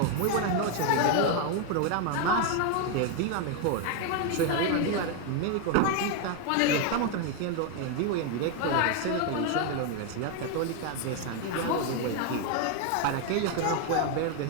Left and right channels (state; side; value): different; both; correlation 0.01